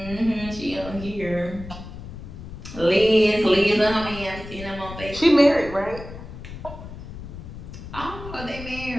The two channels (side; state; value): left; noise; rumble, 12 dB below the sound